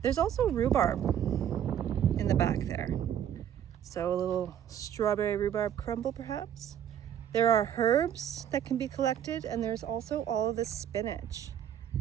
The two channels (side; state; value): left; quieter; 9.9 dB